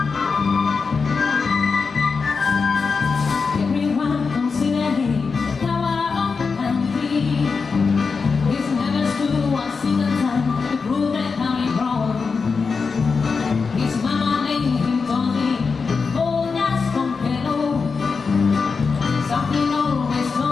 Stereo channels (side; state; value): right; quieter; 4.9 dB